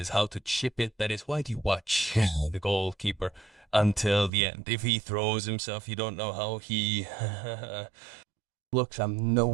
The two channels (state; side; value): drops out; left; at 4.3 s